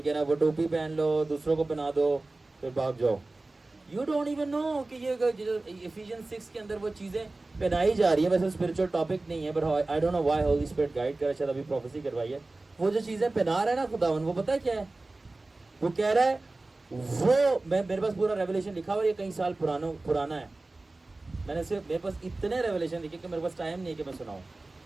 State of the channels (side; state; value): left; quieter; 3.1 dB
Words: ہے نا, وہ ٹوپی پہن لو, دوسروں کو پہنا دو, پھر بھاگ جاؤ. یو ڈونٹ ایون نو کہ یہ ایفیشین 6 کے اندر وہ چیزیں پہنائی جا رہی ہیں. ویسے اسپرچل ٹاپک نہیں ہے, but I don't know why Holy Spirit guide کر رہا ہے, شاید ابھی پروفیسی کروائی ہے. وہ جو چیزیں پہنا رہا ہے نا خداوند, وہ پتہ ہے کیا ہے؟ وہ کہہ رہا ہے, وہ میرے پاس پورا ریولیشن لکھا ہوا, یہ کئی سال پرانا ہے. میں نے صرف, میرے پاس اتنے ریولیشن لکھے کہ میرے پاس ٹائم نہیں ہے کہ میں سناؤں.